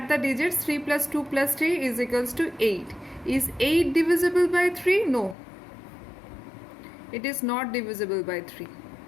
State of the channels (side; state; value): right; drops out; at 5.4 s